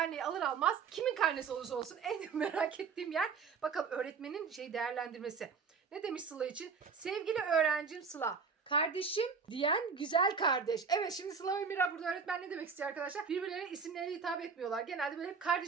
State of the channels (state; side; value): quieter; left; 5.7 dB